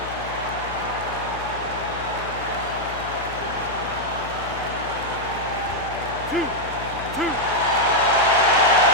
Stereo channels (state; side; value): noise; left; hum, 12 dB below the sound